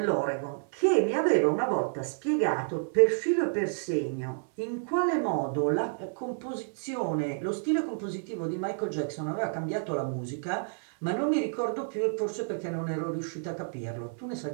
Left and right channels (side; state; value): left; silent; 58 dB below the other